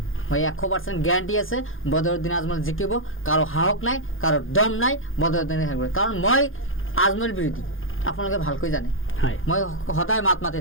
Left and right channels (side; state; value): right; late; 0.59 ms